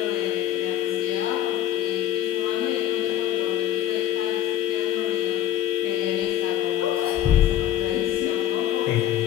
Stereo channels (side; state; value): right; quieter; 11.1 dB